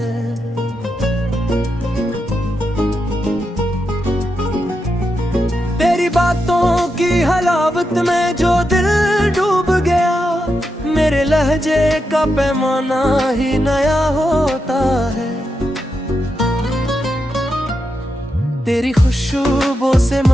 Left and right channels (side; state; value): both; normal; correlation 0.85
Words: तेरी बातों की हलावत में जो दिल डूब गया, मेरे लहजे का पैमाना ही नया होता है। तेरी खुशबू से